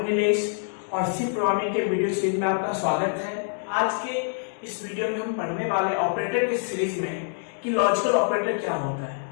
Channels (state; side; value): silent; right; digital silence